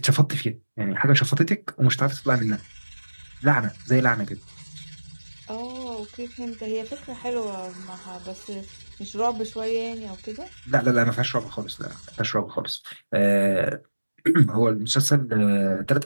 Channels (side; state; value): both; inverted; correlation -1.00